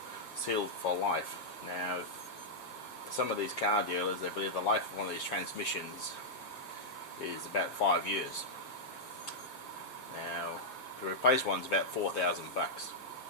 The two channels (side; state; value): right; late; 7.6 ms